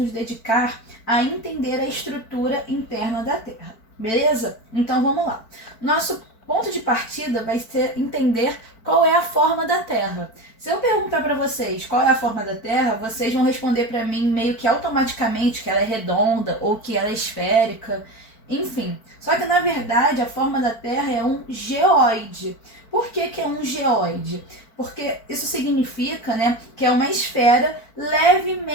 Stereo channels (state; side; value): late; right; 4.5 ms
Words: dedicar a entender a estrutura interna da Terra, beleza? Então vamos lá. Nosso ponto de partida vai ser entender qual é a forma da Terra. Se eu perguntar para vocês qual é a forma da Terra, vocês vão responder para mim meio que automaticamente que ela é redonda ou que ela é esférica, enfim. Só que na verdade a forma da Terra é um geóide. Por que é um geóide? Porque isso significa, que é uma esfera